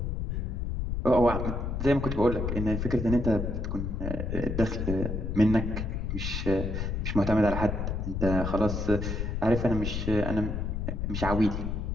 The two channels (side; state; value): left; noise; rumble, 2 dB below the sound